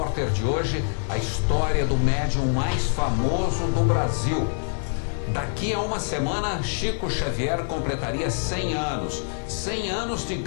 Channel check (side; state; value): right; silent; digital silence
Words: de hoje, a história do médium mais famoso do Brasil. Daqui a uma semana, Chico Xavier completaria 100 anos. 100 anos de